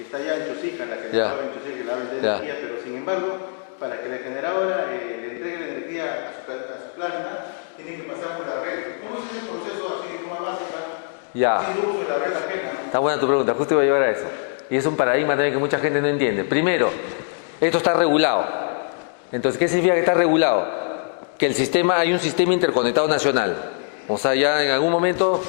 está ya en Chosica, la generadora en Chosica, que la vende energía, pero sin embargo, para que la generadora le entregue la energía a su planta, tiene que pasar por la red. ¿Cómo es ese proceso así de forma básica? Ya. Sin uso de la red ajena, ¿no? Está buena tu pregunta, justo iba a llevar a eso. Y es un paradigma también que mucha gente no entiende. Primero, esto está regulado. Entonces, ¿qué significa que está regulado? Que el sistema, hay un sistema interconectado nacional. O sea, ya en algún momento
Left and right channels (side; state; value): right; silent; 64 dB below the other